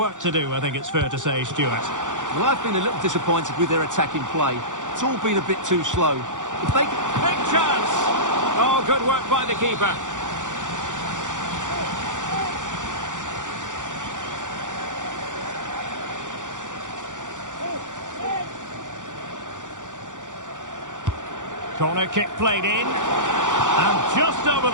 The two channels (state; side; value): late; left; 0.86 ms